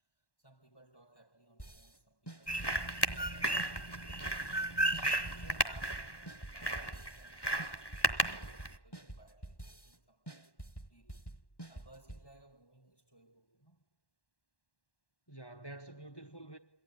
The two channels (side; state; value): right; late; 1.1 ms